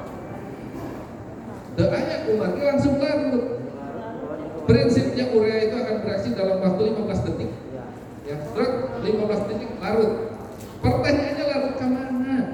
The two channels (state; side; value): identical; both; correlation 1.00